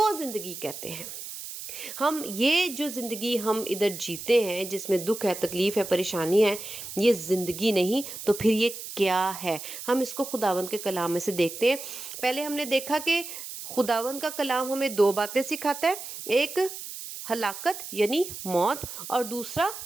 زندگی کہتے ہیں۔ ہم یہ جو زندگی ہم ادھر جیتے ہیں، جس میں دکھ ہے، تکلیف ہے، پریشانی ہے، یہ زندگی نہیں تو پھر یہ کیا ہے؟ ہم اس کو خداوند کے کلام میں سے دیکھتے ہیں۔ پہلے ہم نے دیکھا کہ خداوند کا کلام ہمیں دو باتیں سکھاتا ہے، ایک ہلاکت یعنی موت، اور دوسرا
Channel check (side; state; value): right; noise; hiss, 10 dB below the sound